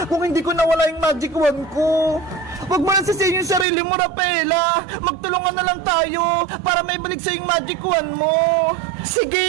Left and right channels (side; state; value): left; drops out; at 3.7 s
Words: kung hindi ko nawala yung magic wand ko. Huwag mo lang sisihin yung sarili mo, Rafaela. Magtulungan na lang tayo para may balik sa yung magic wand mo.